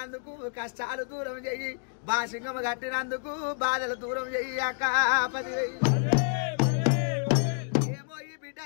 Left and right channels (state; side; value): silent; right; 59 dB below the other